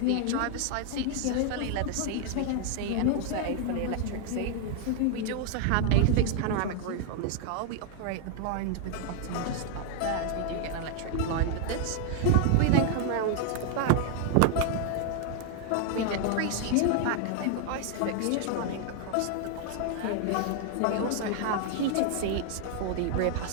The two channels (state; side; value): different; both; correlation 0.00